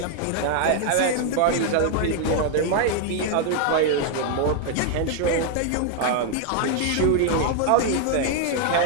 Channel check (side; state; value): both; different; correlation 0.00